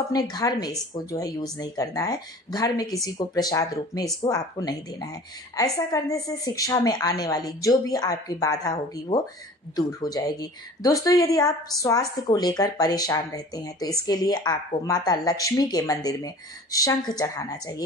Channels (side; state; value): both; normal; correlation 0.44